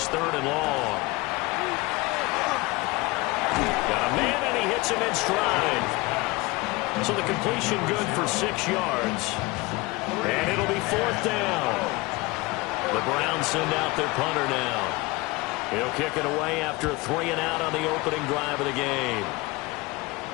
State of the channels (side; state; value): right; quieter; 23.1 dB